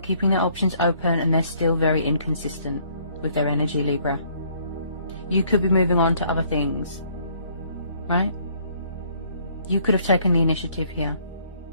their options open and they're still very inconsistent with their energy, Libra. You could be moving on to other things, right? You could have taken the initiative here.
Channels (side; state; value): both; inverted; correlation -0.63